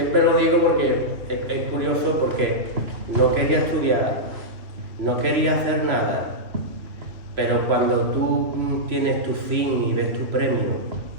lo digo porque es curioso, porque no quería estudiar, no quería hacer nada. Pero cuando tú tienes tu fin y ves tu premio,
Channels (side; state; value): left; late; 3.0 ms